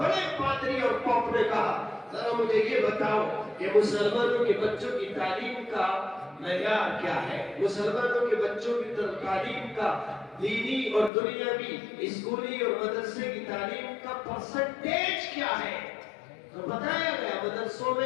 پادری اور پوپ نے کہا ذرا مجھے یہ بتاؤ کہ مسلمانوں کے بچوں کی تعلیم کا معیار کیا ہے، مسلمانوں کے بچوں کی تعلیم کا دینی اور دنیاوی اسکولی اور مدرسے کی تعلیم کا پرسنٹیج کیا ہے۔ تو بتایا گیا مدرسوں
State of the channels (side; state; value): right; drops out; at 11.1 s